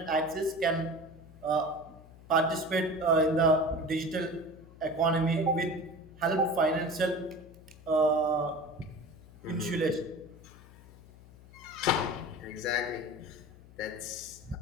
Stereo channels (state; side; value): noise; left; hum, 21 dB below the sound